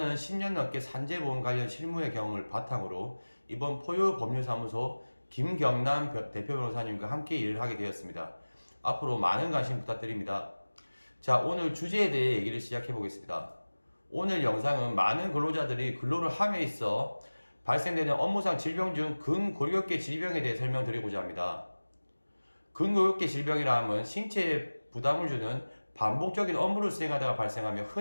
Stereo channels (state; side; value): inverted; both; correlation -1.00